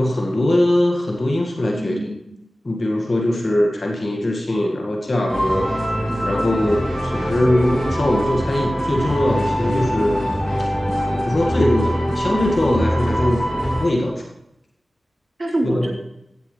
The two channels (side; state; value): both; normal; correlation 0.96